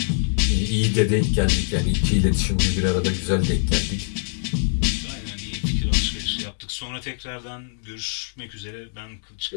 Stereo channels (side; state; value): right; silent; digital silence